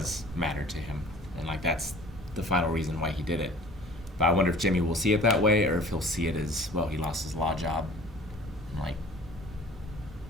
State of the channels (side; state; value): both; normal; correlation 0.47